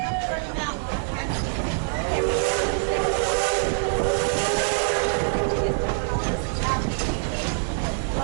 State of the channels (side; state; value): left; silent; 62 dB below the other